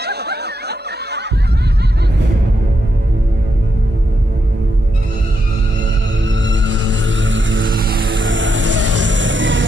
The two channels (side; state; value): both; normal; correlation 0.82